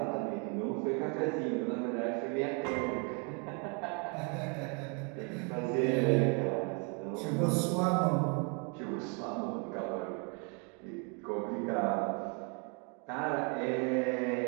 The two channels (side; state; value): left; quieter; 34.2 dB